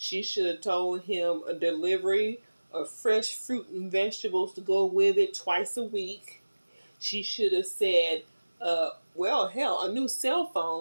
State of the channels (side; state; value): both; inverted; correlation -1.00